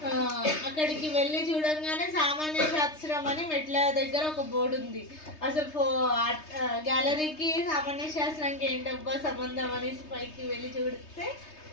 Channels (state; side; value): late; right; 3.3 ms